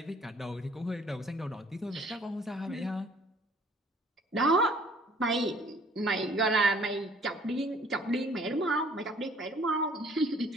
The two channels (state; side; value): normal; both; correlation 0.56